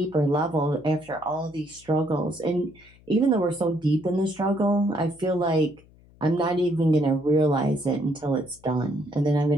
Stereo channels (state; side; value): noise; left; hum, 27 dB below the sound